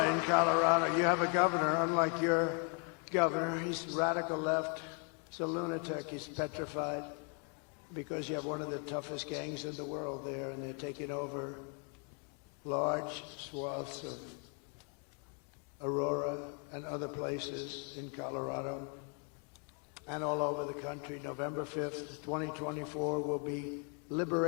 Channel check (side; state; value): right; quieter; 39.2 dB